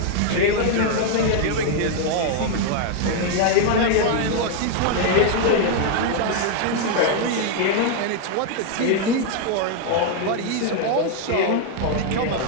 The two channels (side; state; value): both; different; correlation 0.00